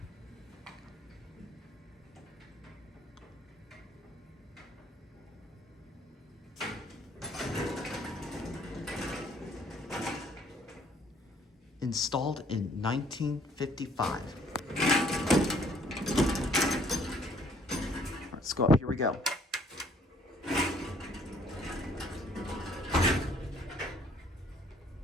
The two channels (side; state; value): both; normal; correlation 0.61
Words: Installed in 1955. All right, let's go up. Here we go.